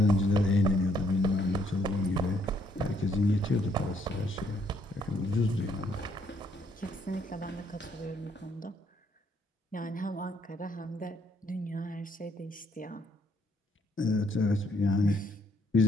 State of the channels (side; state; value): both; normal; correlation 0.69